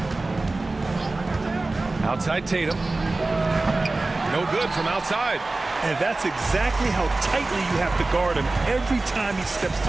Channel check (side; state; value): left; quieter; 3.2 dB